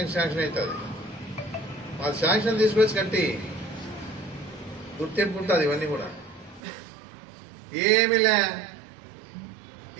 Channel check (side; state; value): left; drops out; at 6.6 s